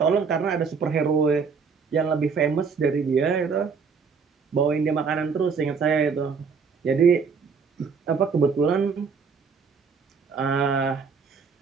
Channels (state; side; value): quieter; left; 5.5 dB